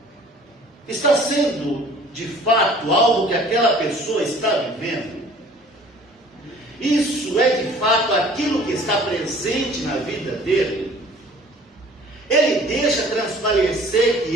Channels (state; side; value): normal; both; correlation 0.51